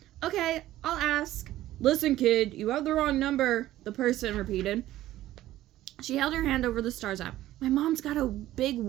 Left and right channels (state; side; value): quieter; left; 14.6 dB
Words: Okay, I'll ask. Listen, kid, you have the wrong number, the person repeated. She held her hand over the Stars app. My mom's got a big